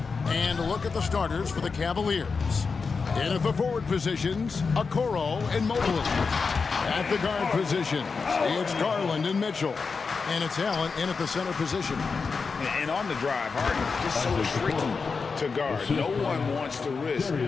And look at the starters for the Cavaliers. In at the forward positions, Okoro and Mobley. At the guard positions, it's Garland and Mitchell. And it's Allen in at the center position. And on the drive, Harden just so tricky to guard. No one wants to risk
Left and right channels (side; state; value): right; quieter; 4.9 dB